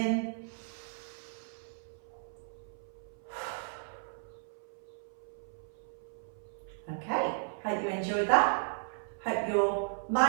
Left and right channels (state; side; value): silent; left; 54 dB below the other